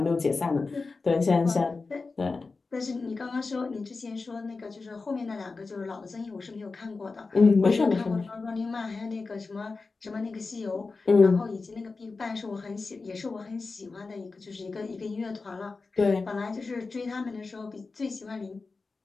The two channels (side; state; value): right; quieter; 4.0 dB